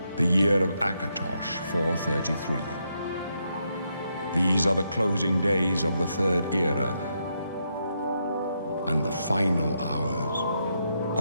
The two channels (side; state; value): both; inverted; correlation -0.80